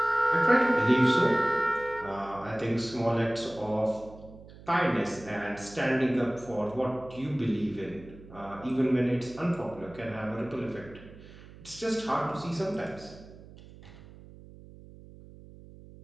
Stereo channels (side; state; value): right; noise; hum, 19 dB below the sound